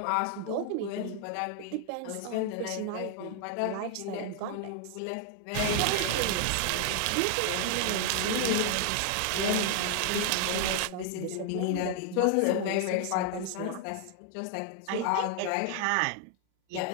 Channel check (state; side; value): different; both; correlation 0.00